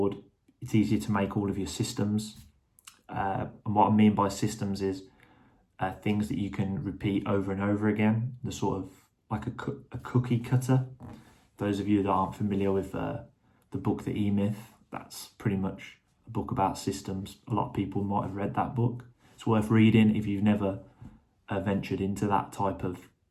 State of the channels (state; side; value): identical; both; correlation 1.00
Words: it's easier to make all of your systems. And what I mean by systems is things that you can repeat over and over again, the sort of like a cookie cutter. Those of you that aren't familiar with the book, The E-Myth, that's pretty much a book about systems. A lot of people might have read that book. It's worth reading if you've never ventured into that type of